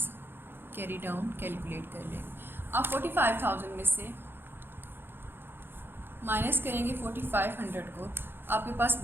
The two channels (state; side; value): late; left; 0.10 ms